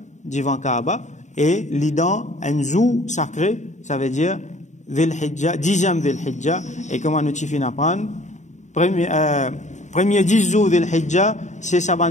devant Kaaba, et li dans un zoo sacré, ça veut dire Dhil Hijja, 10e Dhil Hijja, et comment nous t'y fin apprendre, premier 10 jours Dhil Hijja, c'est ça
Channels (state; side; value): late; right; 0.34 ms